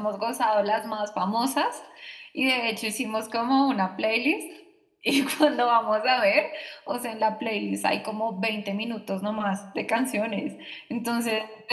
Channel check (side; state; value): both; identical; correlation 1.00